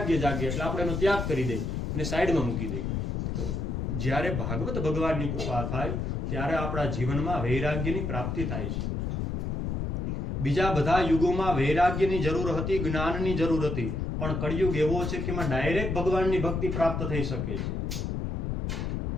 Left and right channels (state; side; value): noise; left; rumble, 1 dB below the sound